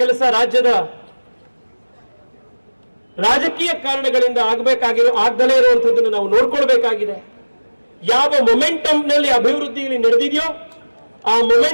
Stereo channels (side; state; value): both; inverted; correlation -1.00